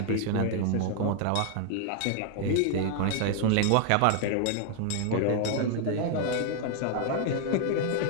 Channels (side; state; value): both; different; correlation 0.00